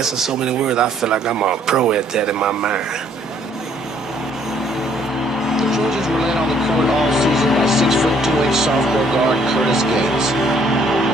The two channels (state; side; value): normal; both; correlation 0.64